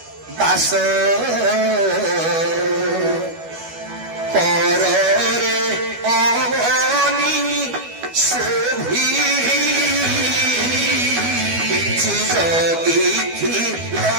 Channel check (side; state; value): left; late; 12 ms